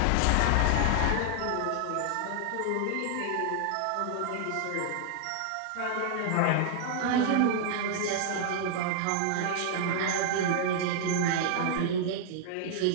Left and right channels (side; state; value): both; different; correlation 0.00